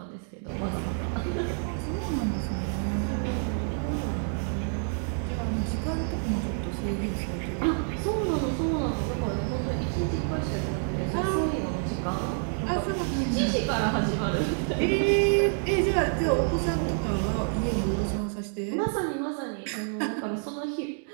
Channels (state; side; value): silent; left; 59 dB below the other